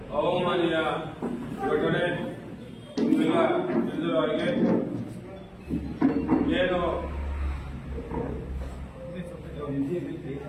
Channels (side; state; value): both; identical; correlation 1.00